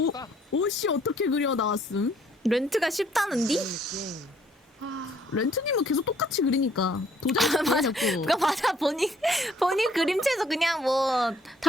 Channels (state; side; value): normal; both; correlation 0.63